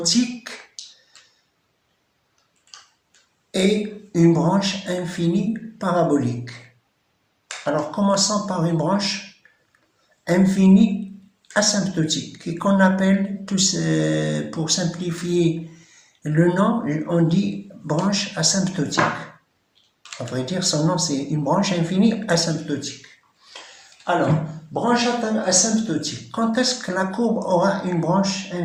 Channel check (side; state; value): both; identical; correlation 1.00